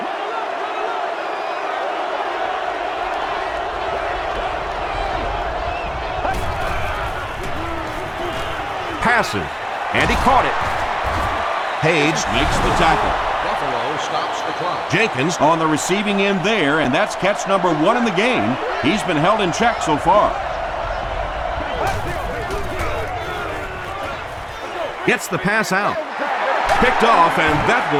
Passes, and he caught it. Page makes the tackle. Buffalo stops the clock. Jenkins on the receiving end there, and that's catch number 1 in the game. He's been held in check so far. Gets the pass out. Picked off, and that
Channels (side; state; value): both; identical; correlation 1.00